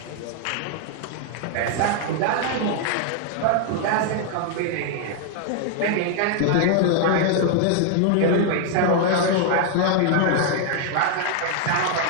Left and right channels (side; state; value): both; different; correlation 0.00